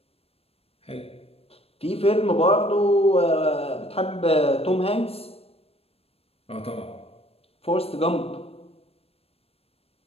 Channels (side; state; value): right; late; 0.28 ms